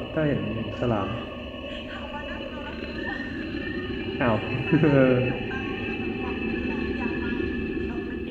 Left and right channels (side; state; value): both; identical; correlation 1.00